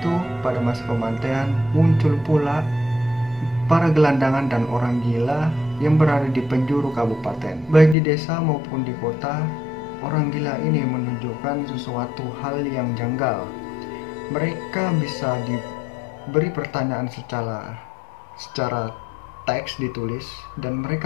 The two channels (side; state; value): right; drops out; at 8.0 s